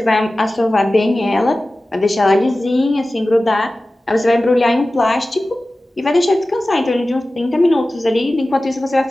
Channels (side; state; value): both; normal; correlation 0.96